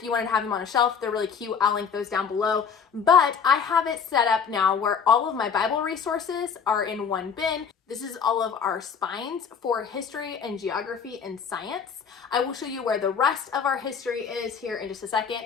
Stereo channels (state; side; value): quieter; right; 6.6 dB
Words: you wanted to have them on a shelf, they're really cute. I'll link those down below. But I have it set up now where all of my Bible resources are in one bin. This is all of our spines for history and geography and science. I will show you where the rest of our history is here in just a second.